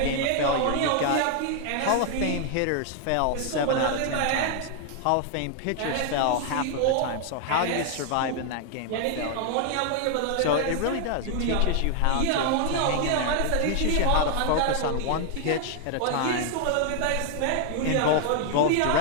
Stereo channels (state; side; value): different; both; correlation 0.00